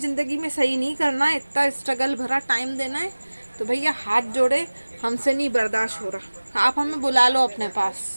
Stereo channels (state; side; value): inverted; both; correlation -1.00